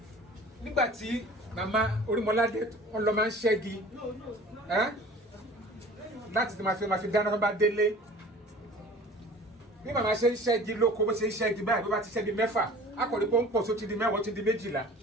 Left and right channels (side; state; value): both; normal; correlation 0.44